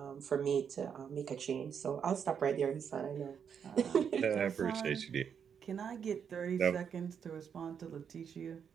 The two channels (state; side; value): quieter; left; 7.4 dB